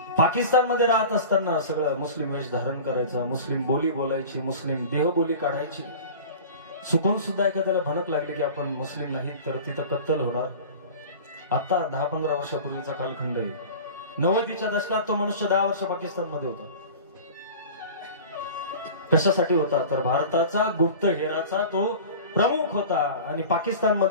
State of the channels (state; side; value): inverted; both; correlation -0.37